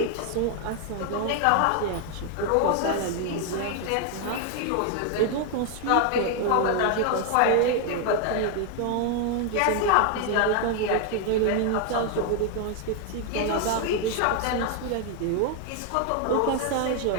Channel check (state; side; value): different; both; correlation 0.00